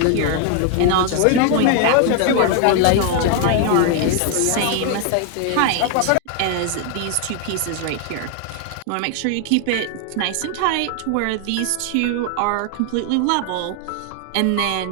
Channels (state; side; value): different; both; correlation 0.00